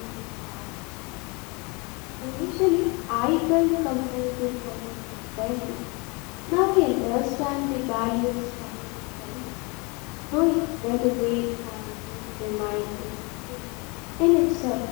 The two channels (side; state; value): right; quieter; 29.6 dB